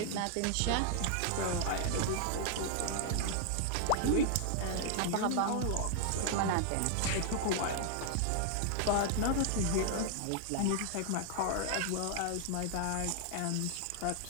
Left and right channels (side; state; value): both; different; correlation 0.00